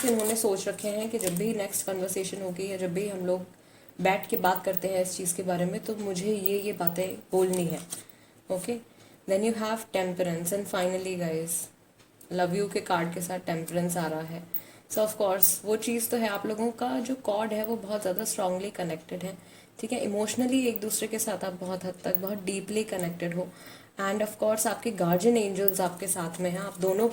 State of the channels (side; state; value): both; identical; correlation 1.00